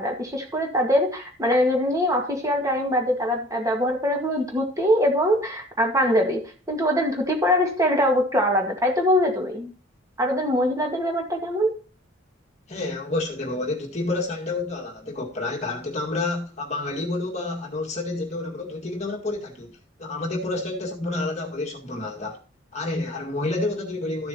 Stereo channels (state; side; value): normal; both; correlation 0.47